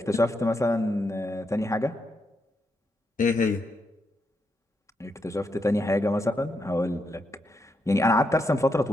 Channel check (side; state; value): both; normal; correlation 0.81